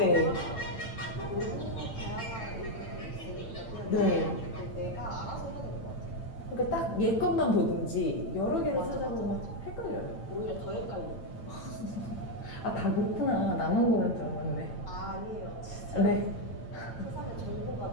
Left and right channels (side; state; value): right; late; 8.9 ms